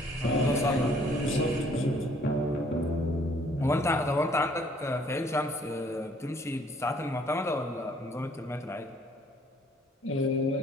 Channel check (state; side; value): normal; both; correlation 0.61